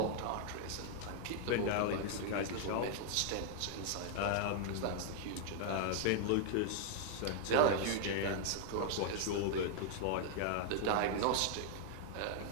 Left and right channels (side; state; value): both; different; correlation 0.00